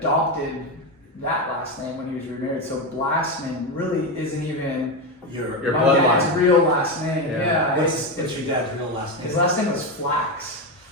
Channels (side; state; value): both; normal; correlation 0.13